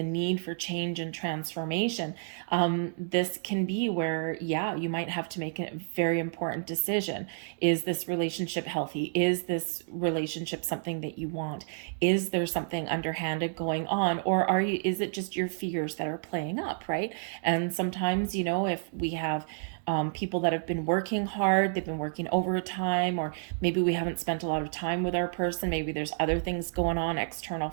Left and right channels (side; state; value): left; silent; digital silence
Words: need for change and transformation, this can be where, you might have to make a very important decision. Is this relationship healthy? Is this relationship something that you want? Is there something underhanded going on? Or is it just your fears that are playing up, right? And sometimes, if we have people that have been working hard, they've been working overtime, or maybe we haven't spent a lot of time with our person, maybe there's other things going on, external